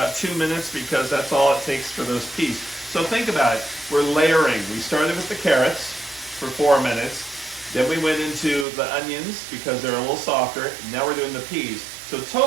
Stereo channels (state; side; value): drops out; left; at 8.7 s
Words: 2 minutes because that's all it takes for those peas. So think about it. We're layering. We started with the carrots for 4 minutes. Then we went into the onions because they're a little softer. Now we're doing the peas. So